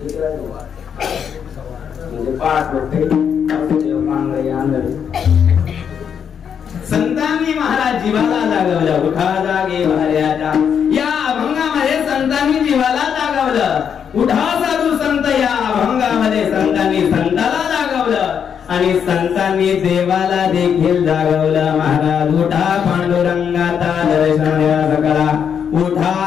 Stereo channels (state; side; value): quieter; right; 7.7 dB